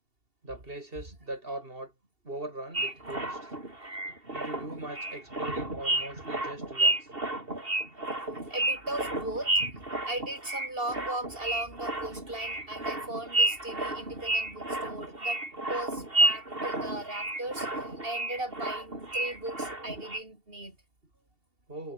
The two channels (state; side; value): late; left; 2.7 ms